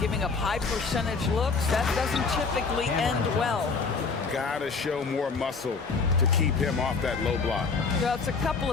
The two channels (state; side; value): quieter; right; 4.7 dB